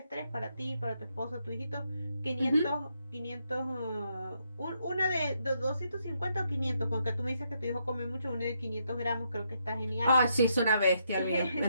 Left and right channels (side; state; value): both; inverted; correlation -0.78